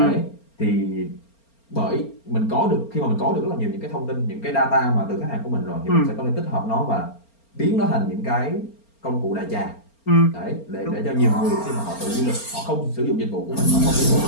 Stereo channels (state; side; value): late; right; 4.4 ms